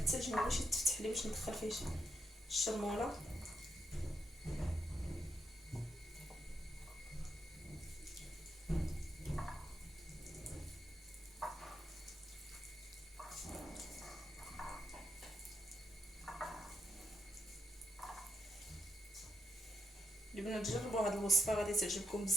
ما بغيتش يتفتح لي باش ندخل فيه الشرموله. البنات جربوا هاد الوصفه غادي تعجبكم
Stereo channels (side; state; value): both; normal; correlation 0.80